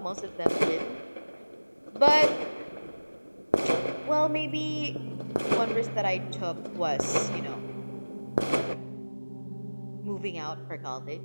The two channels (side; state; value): both; inverted; correlation -1.00